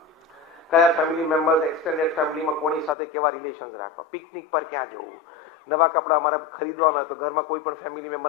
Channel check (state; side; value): drops out; right; at 3.0 s